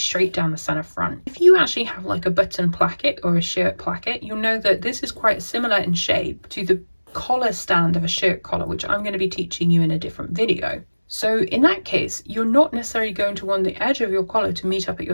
down the center front. If you actually have like a button placket or a shirt placket, you'll know that this is quite similar in shape to the collar stand of a shirt collar, which I'm going to be teaching you in a different video. So in that case, you're not necessarily going to want the edge of your collar to meet up at your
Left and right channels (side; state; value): both; inverted; correlation -1.00